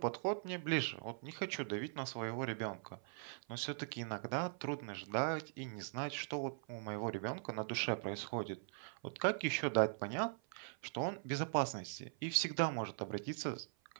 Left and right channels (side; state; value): left; silent; 50 dB below the other